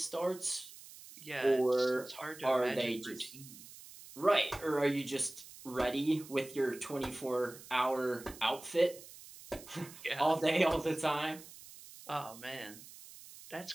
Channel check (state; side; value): noise; right; hiss, 17 dB below the sound